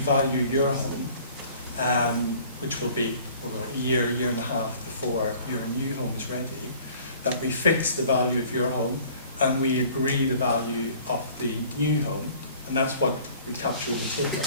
your home, which will be a year and a half before your new home is ready, that we fix the value of your home and we agree the value of the new home, and that's what we capture in the table.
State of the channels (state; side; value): inverted; both; correlation -0.51